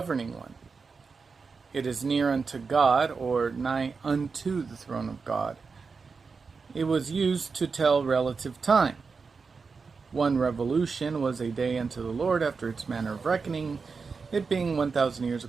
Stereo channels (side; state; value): left; quieter; 4.9 dB